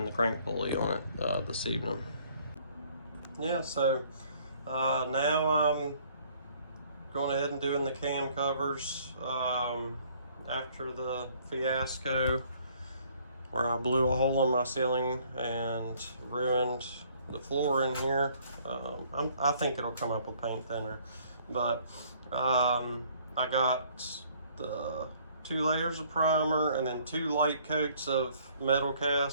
the crank pulley on it this evening. Yeah, so now I'm going ahead and doing the cam covers after the fiasco where I blew a hole in my ceiling and ruined the floor in here. I think it'll come up with paint thinner, but I got the 2 layers of primer, and then 2 light coats of metal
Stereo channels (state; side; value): inverted; both; correlation -0.61